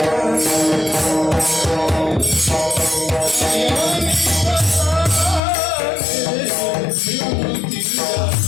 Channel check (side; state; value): right; drops out; at 5.4 s